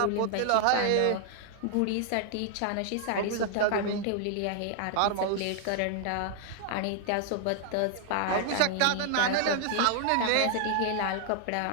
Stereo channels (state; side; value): different; both; correlation 0.00